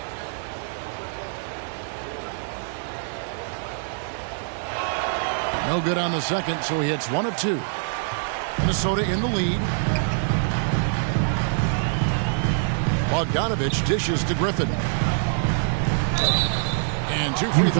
No good on the second, so he hits 1 of 2. Minnesota in the lead. Bogdanovic dishes to Griffin. And 2 free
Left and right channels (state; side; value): silent; left; digital silence